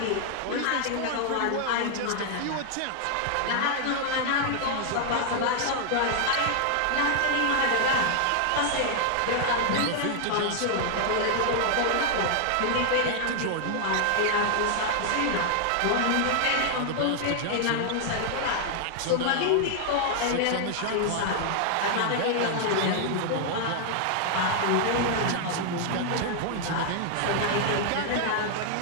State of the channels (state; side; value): different; both; correlation 0.00